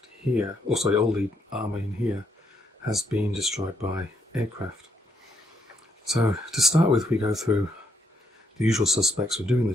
here, or sorry, all the armour in here has been destroyed by aircraft. So to start with, we go through the usual suspects for doing the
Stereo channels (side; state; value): both; normal; correlation 0.75